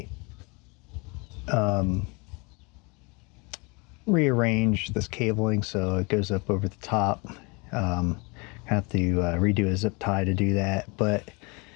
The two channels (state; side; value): quieter; right; 28.8 dB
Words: rearrange this cabling so it goes up over the top. Have to redo a zip tie to do that, but